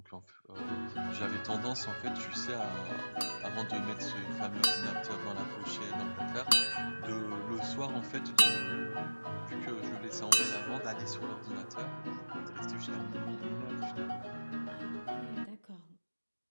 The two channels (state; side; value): inverted; both; correlation -1.00